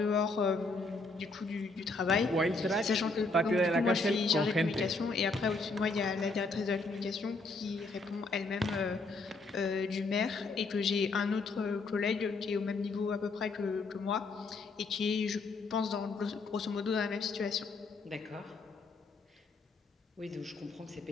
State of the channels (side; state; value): right; quieter; 3.5 dB